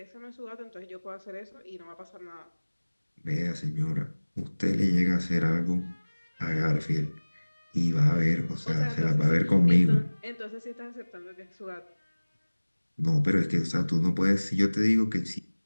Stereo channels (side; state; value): both; inverted; correlation -1.00